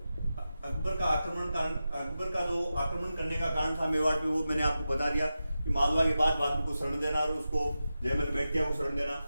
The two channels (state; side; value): inverted; both; correlation -0.92